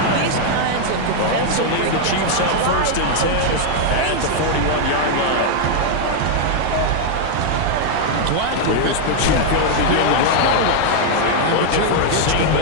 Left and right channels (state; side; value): different; both; correlation 0.00